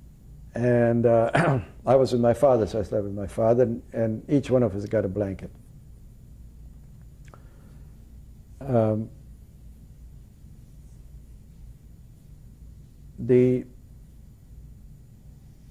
And I was with my father, so I slept with my father, and each one of us got a blanket. The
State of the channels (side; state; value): both; identical; correlation 1.00